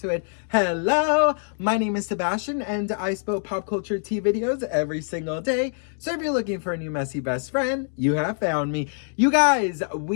it, hello, my name is Sebastian, and I spill pop culture tea videos every single day. So if you're looking for a new messy best friend, you have found me. You guys,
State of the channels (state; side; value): silent; right; 62 dB below the other